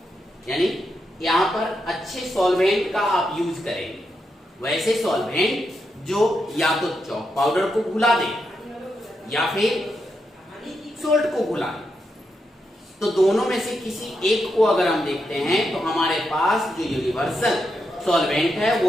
यानी यहां पर अच्छे सॉल्वेंट का आप यूज करेंगे। वैसे सॉल्वेंट जो या तो चॉक पाउडर को घुला दे या फिर सोल्ट को घुला दे। तो दोनों में से किसी एक को अगर हम देखते हैं तो हमारे पास जो यूनिवर्सल सॉल्वेंट है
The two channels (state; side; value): normal; both; correlation 0.84